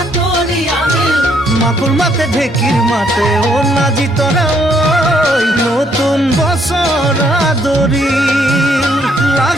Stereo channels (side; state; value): both; normal; correlation 0.69